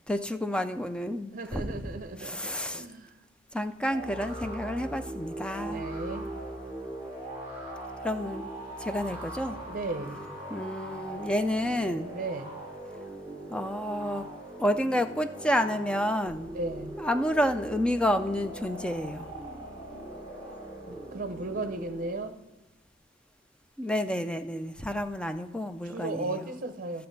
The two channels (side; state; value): both; normal; correlation 0.71